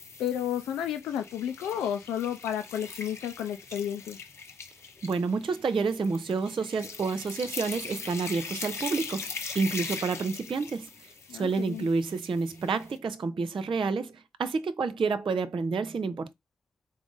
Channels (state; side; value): normal; both; correlation 0.70